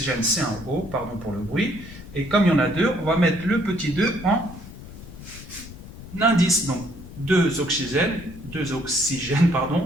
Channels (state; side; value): noise; left; rumble, 15 dB below the sound